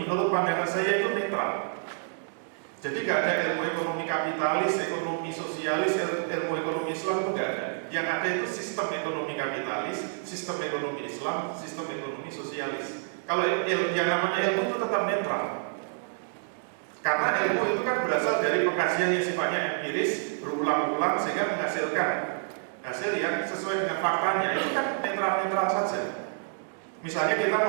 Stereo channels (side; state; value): left; silent; digital silence